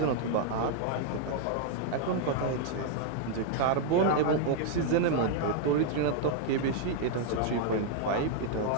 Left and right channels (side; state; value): both; different; correlation 0.00